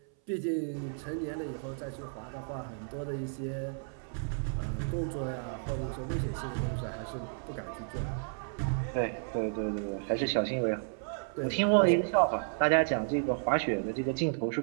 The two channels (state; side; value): silent; left; 56 dB below the other